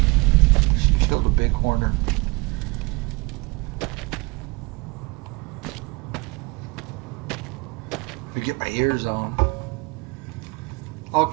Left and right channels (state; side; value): quieter; left; 26.1 dB